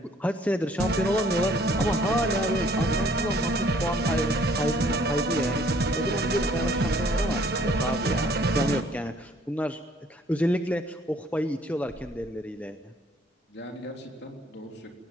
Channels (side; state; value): both; normal; correlation 0.60